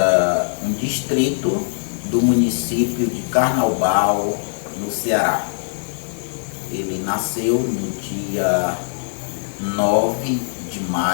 um distrito do município de Carnaubal, no Ceará. Ele nasceu no dia 9 de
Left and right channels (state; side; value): silent; right; digital silence